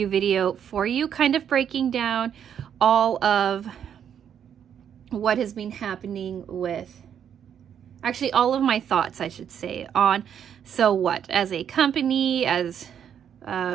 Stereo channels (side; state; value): left; quieter; 8.7 dB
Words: video for you, kind of breaking down all of what has been happening with, actually all of my thoughts, I should say, on So What as a company, as